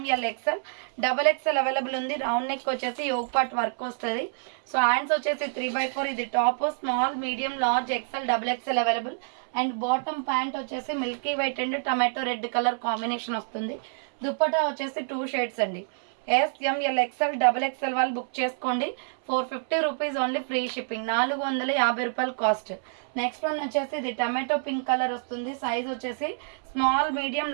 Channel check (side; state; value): left; silent; 60 dB below the other